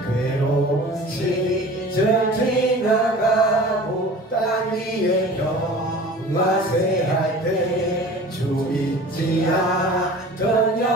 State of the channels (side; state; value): both; normal; correlation 0.41